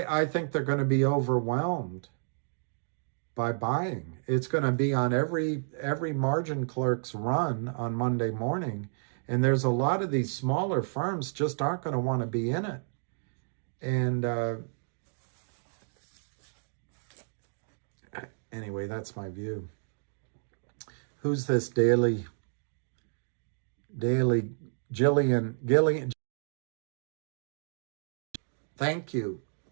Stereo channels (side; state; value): left; silent; digital silence